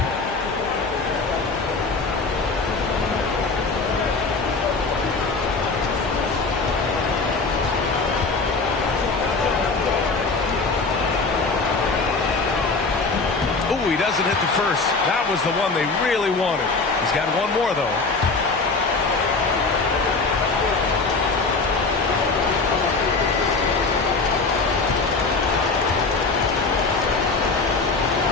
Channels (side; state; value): right; quieter; 4.0 dB